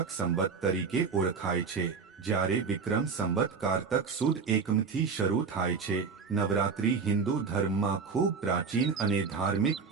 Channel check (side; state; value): left; quieter; 5.3 dB